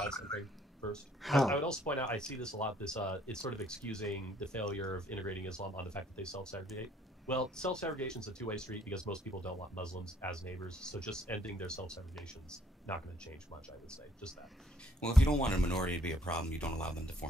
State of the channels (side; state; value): both; normal; correlation 0.64